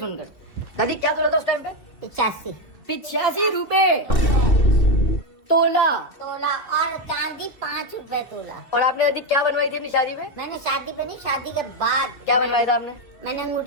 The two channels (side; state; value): right; late; 2.7 ms